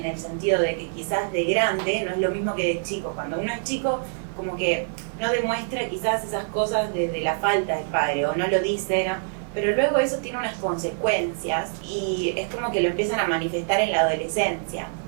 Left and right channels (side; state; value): left; silent; 62 dB below the other